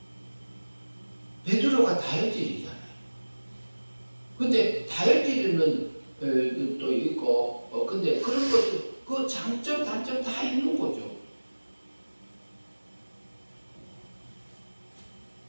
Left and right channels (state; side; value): inverted; both; correlation -1.00